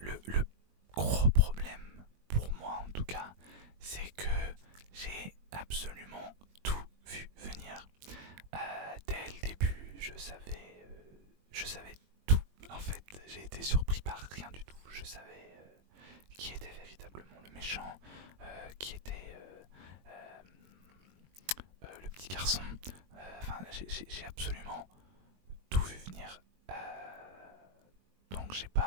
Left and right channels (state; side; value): late; left; 21 ms